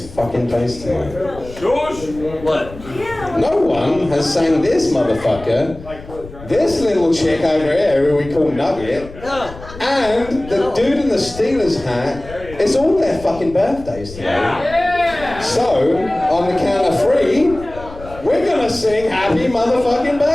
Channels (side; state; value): left; noise; rumble, 16 dB below the sound